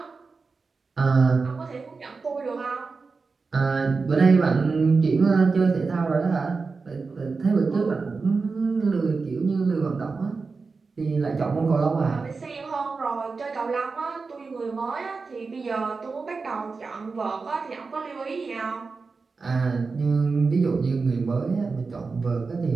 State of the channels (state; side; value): quieter; left; 4.4 dB